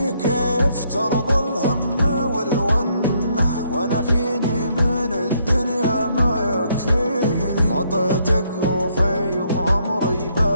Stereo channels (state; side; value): inverted; both; correlation -0.71